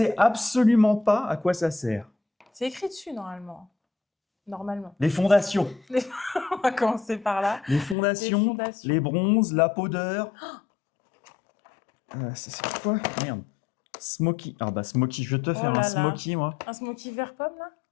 absolument pas à quoi ça sert. C'est écrit dessus, normalement. Normalement. Les fondations. On va commencer par là. Les fondations, les bronzes, la powder. C'est quoi? Merde. Smoky. Ah bah Smoky, je vais te faire un Smoky, moi. Un Smoky vert pomme, là?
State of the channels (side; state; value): right; drops out; at 8.0 s